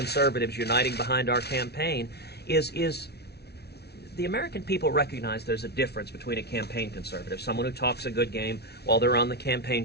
uniting behind our campaign is the American people recognize there's a difference between a campaign conservative, someone who talks a good game while they're on the campaign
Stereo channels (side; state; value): right; late; 0.48 ms